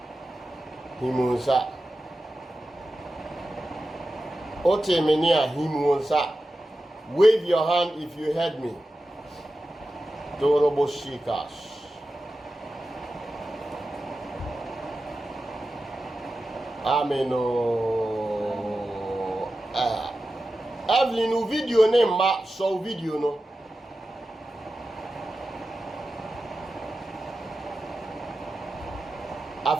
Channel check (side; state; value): both; normal; correlation 0.93